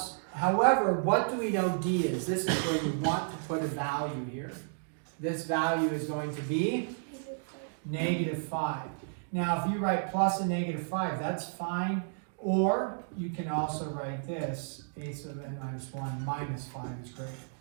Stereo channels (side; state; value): left; silent; digital silence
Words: however, what do we know D is? This is where we want to put a value here. This value is going to be -5. Now, if you write plus and -5, that's fine. Or you can also write this, a sub n minus 1 minus 5 is great.